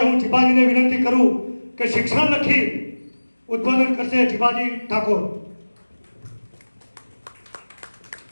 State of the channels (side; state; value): both; inverted; correlation -1.00